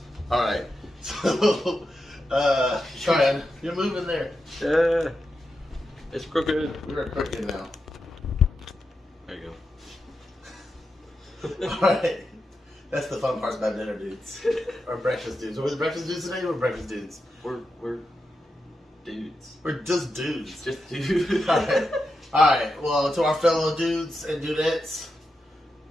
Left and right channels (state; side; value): normal; both; correlation 0.88